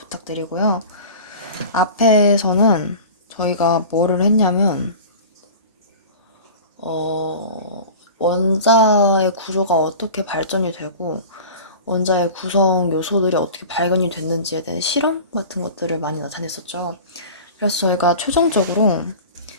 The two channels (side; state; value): both; inverted; correlation -0.37